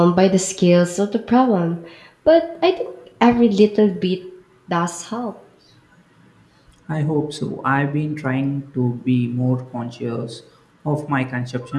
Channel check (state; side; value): identical; both; correlation 1.00